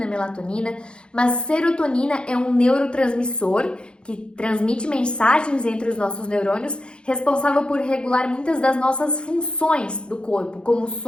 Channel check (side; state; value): right; late; 0.054 ms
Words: melatonina, mas serotonina é um neurotransmissor que transmite mensagens entre os nossos neurônios, responsável por regular muitas das nossas funções do corpo, como o